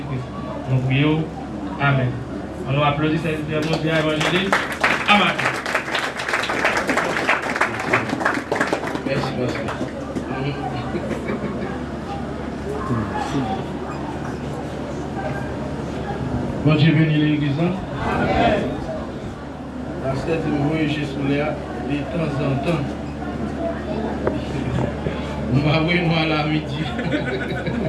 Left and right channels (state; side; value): identical; both; correlation 1.00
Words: Nous prions. Amen. On nous applaudit cette mondiale évangéliste. Amen. Merci, pasteur. Bon Dieu bénit l'église. Amen. Pasteur dit moi chez Souléa de temps en temps. Nous allons nous à la midi.